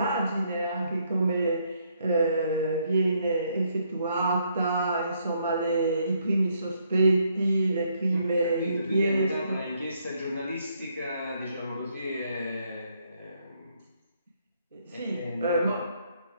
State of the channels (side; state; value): both; inverted; correlation -0.72